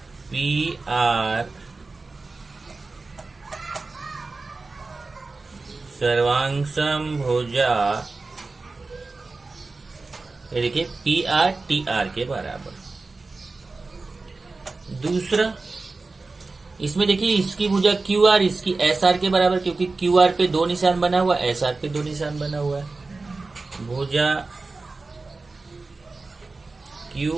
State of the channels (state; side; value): quieter; left; 3.7 dB